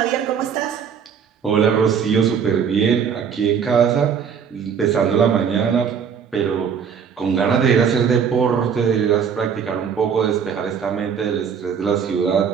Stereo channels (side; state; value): left; quieter; 7.1 dB